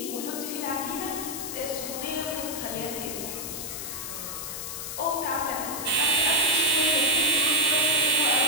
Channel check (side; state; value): left; noise; hiss, 6 dB below the sound